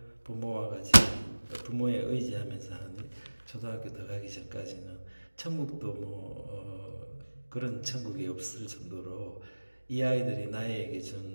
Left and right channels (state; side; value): inverted; both; correlation -1.00